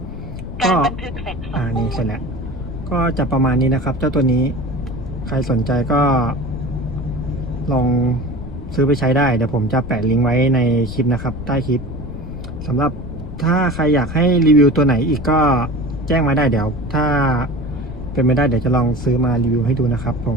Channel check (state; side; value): noise; left; rumble, 11 dB below the sound